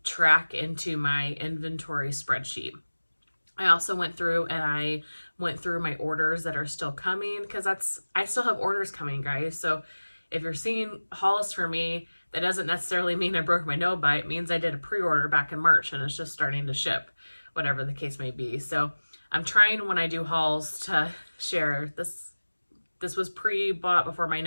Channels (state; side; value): inverted; both; correlation -1.00